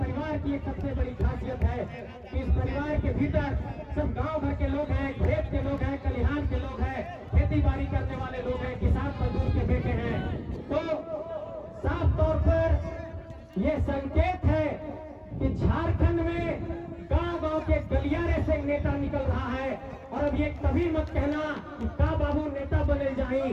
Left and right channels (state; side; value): identical; both; correlation 1.00